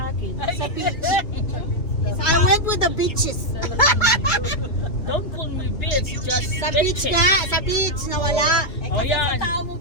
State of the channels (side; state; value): right; late; 2.8 ms